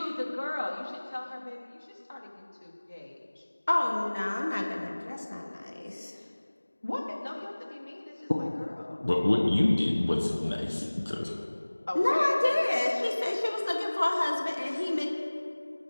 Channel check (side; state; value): both; inverted; correlation -1.00